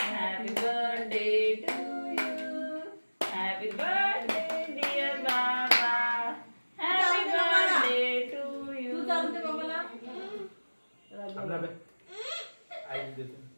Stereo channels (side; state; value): both; inverted; correlation -1.00